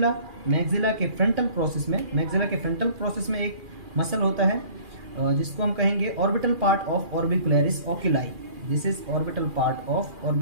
के फ्रंटल प्रोसेस में एक मसल होता है जिसको हम कहेंगे orbital part of orbicularis oculi. This is orbital part of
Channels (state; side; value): late; left; 2.4 ms